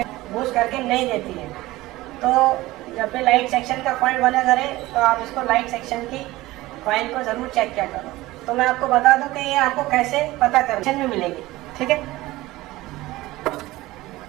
बूस्ट करके नहीं देती है। तो जब भी लाइट सेक्शन का कॉइल बना करें तो आप इसको लाइट सेक्शन की कॉइल को ज़रूर चेक किया करो। तो मैं आपको बता दूं कि ये आपको कैसे पता करने में मिलेगी, ठीक है।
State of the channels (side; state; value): left; quieter; 18.3 dB